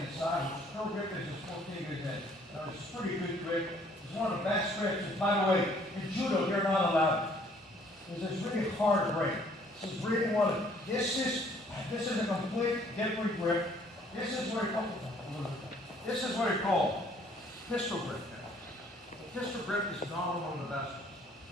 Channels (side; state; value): both; normal; correlation 0.60